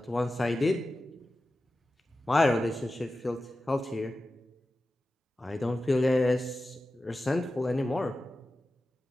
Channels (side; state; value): both; normal; correlation 0.94